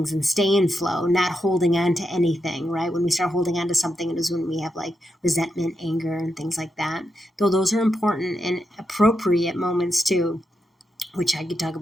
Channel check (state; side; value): normal; both; correlation 0.85